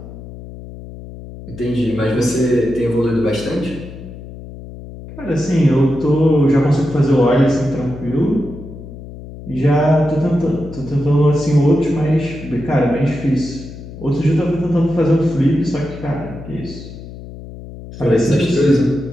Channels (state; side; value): noise; left; hum, 14 dB below the sound